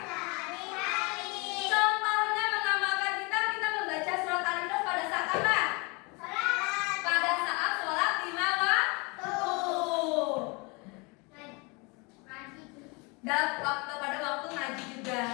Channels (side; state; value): right; quieter; 29.0 dB